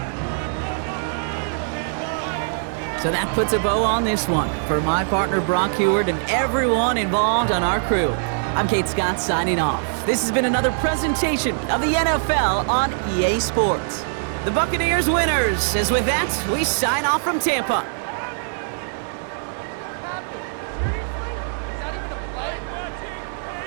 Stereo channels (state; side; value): silent; left; digital silence